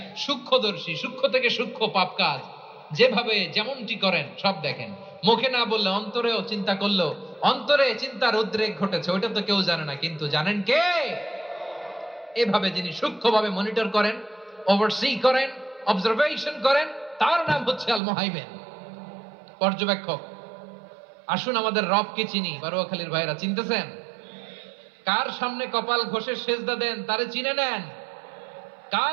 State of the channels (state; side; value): drops out; left; at 18.0 s